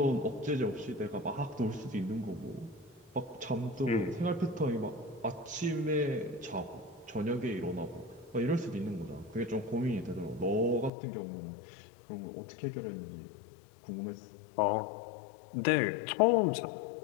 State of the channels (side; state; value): right; drops out; at 10.9 s